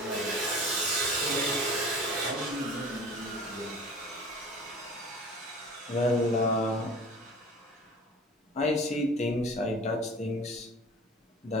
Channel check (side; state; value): both; normal; correlation 0.41